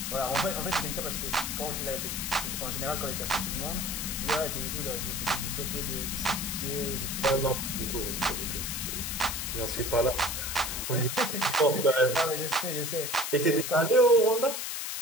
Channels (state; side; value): noise; left; hiss, 3 dB below the sound